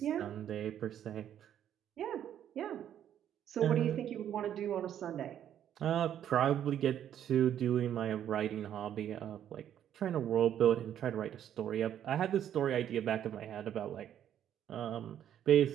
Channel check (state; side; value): quieter; left; 10.2 dB